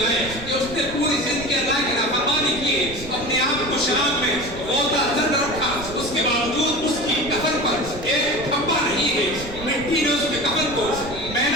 کہ اس نے پوری زندگی اللہ کی نافرمانی کی ہے، اپنے آپ کو شراب میں غوطہ زد رکھا، اس کے باوجود اس کی کفن پر ایک دھبا نہیں ہے، مٹی نے اس کے کفن کو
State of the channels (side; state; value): right; noise; rumble, 13 dB below the sound